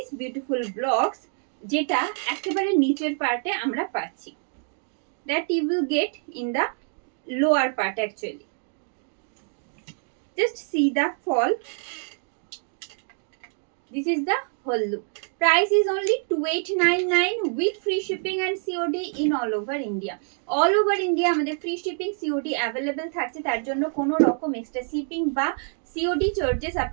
beautiful blocks যেটা একেবারে নিচের পার্টে আমরা পাচ্ছি, that you will get in the lower part actually. Just see the fall. This is the whole look. Price is only 2899 with free shipping and COD in all over India. All over India আমাদের free shipping COD available থাকছে, তার জন্য কোনো রকম extra shipping বা COD charges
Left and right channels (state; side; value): silent; left; 55 dB below the other